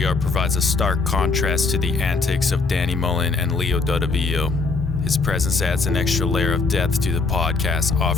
provides a stark contrast to the antics of Danny Mullen and Leo Dadavio. His presence adds an extra layer of depth to the podcast,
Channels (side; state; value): right; quieter; 4.1 dB